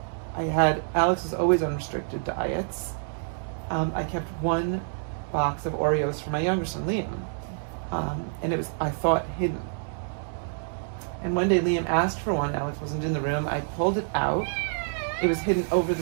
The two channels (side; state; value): left; silent; 60 dB below the other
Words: Alex was always on restricted diets. I kept one box of Oreos for my younger son, Liam. And it was, I thought, hidden. And one day Liam asked for one. Alex wasn't in the room. I pulled it out. It was hidden over the